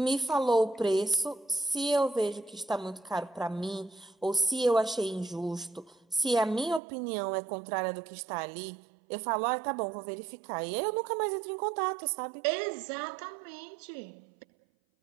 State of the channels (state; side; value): drops out; left; at 6.8 s